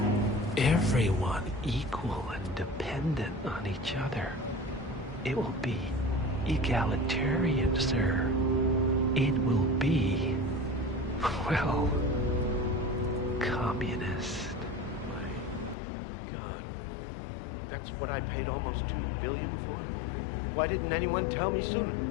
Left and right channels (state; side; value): drops out; right; at 15.8 s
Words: Everyone equal and dependent on each other. It will be egalitarian, sir. It will be, well, communist. My God. That's what I paid almost $2 billion for? Why didn't anyone tell me sooner?